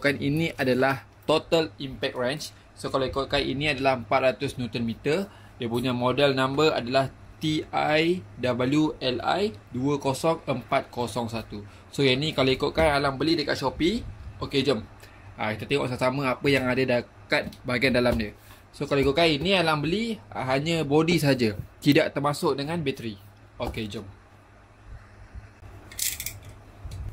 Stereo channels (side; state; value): both; identical; correlation 1.00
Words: ini adalah total impact wrench. So kalau ikutkan ini adalah 400 Nm. Dia punya model number adalah TIWLI 20401. So yang ni kalau ikutkan Alang beli dekat Shopee. Okey, jom. Kita tengok sama-sama apa yang ada dekat bahagian dalam dia. So kalau ikutkan ini Alang beli hanya body saja, tidak termasuk dengan bateri. Okey, jom.